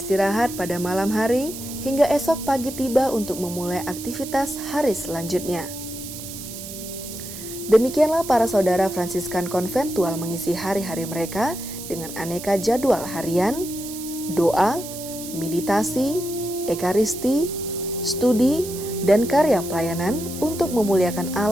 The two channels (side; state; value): right; noise; hiss, 11 dB below the sound